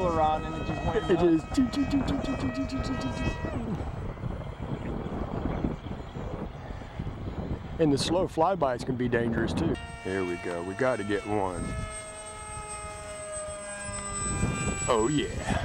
and it just went It nuts. is. And the slow flybys can be dangerous too. Here we go. We got to get one. Oh yeah.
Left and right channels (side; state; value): both; identical; correlation 1.00